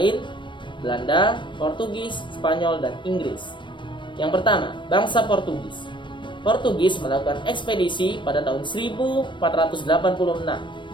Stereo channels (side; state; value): right; late; 0.23 ms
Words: Belanda, Portugis, Spanyol, dan Inggris. Yang pertama, bangsa Portugis. Portugis melakukan ekspedisi pada tahun 1486,